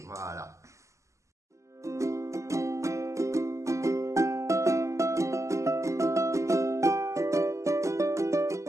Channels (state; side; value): late; left; 0.15 ms